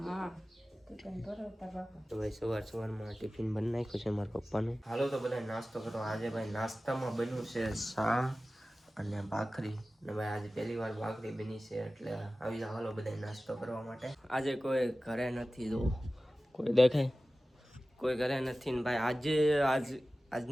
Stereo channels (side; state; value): both; normal; correlation 0.96